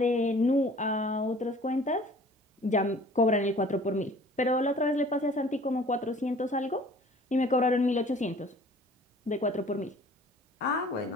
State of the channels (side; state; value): both; normal; correlation 0.50